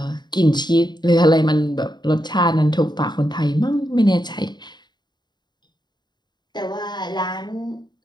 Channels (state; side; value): late; right; 0.21 ms